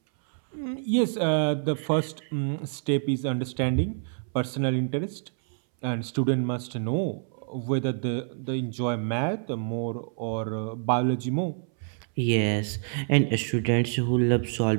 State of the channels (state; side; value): silent; left; 60 dB below the other